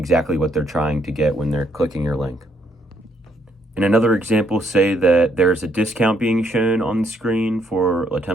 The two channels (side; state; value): both; normal; correlation 0.71